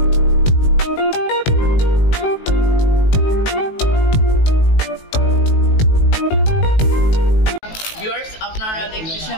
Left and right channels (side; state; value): right; late; 18 ms